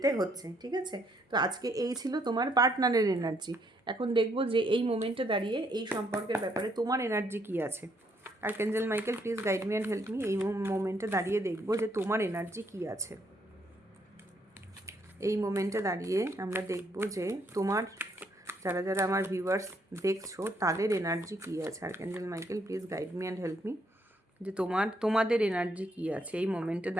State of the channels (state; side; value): normal; both; correlation 0.71